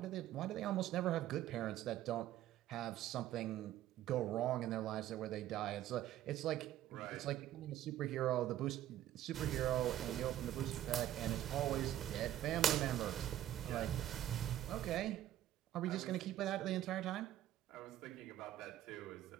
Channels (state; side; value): quieter; left; 12.6 dB